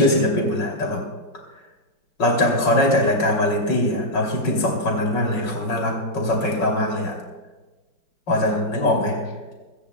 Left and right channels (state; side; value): late; right; 5.4 ms